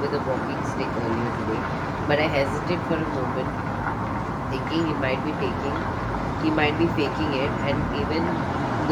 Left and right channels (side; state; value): both; identical; correlation 1.00